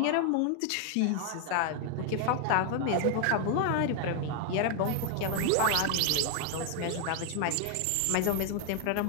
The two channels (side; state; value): both; different; correlation 0.00